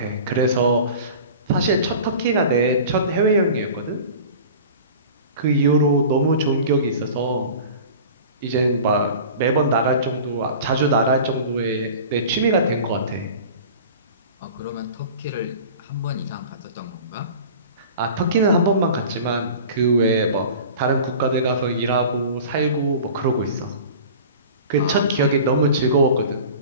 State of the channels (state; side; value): inverted; both; correlation -0.39